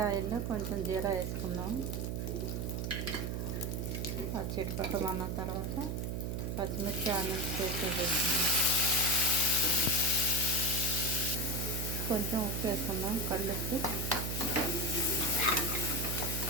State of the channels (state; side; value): noise; right; hum, 2 dB below the sound